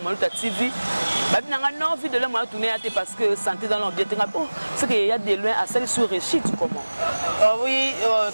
TV ba binanga non envie de le moi tourner parce que santé dans l'ambiance oh c'est qu'il y a des loin à celle sur Réchit comment oui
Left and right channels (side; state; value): both; inverted; correlation -1.00